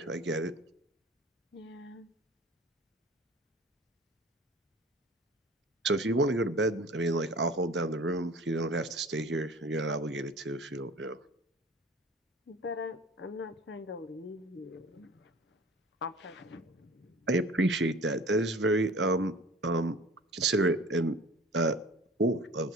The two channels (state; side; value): normal; both; correlation 0.43